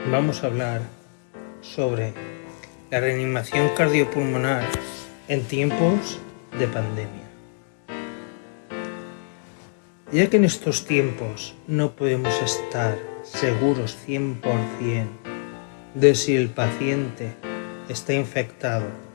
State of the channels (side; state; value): right; silent; digital silence